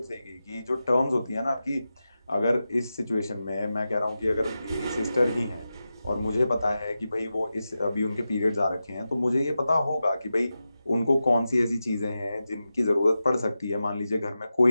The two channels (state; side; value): inverted; both; correlation -0.92